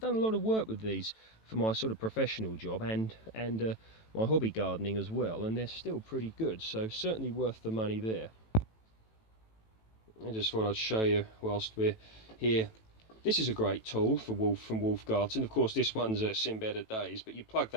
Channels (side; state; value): right; late; 18 ms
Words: a lot of work with these for my sort of professional job and my hobby gardening as well, and they're still pretty good, so certainly worth the money there. I just thought I'd show you whilst we're here. This is a great tool from Wolf Garten. Of course, this one's seen better days, but you plug